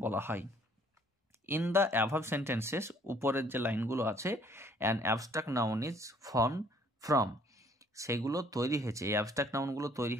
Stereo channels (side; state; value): both; normal; correlation 0.60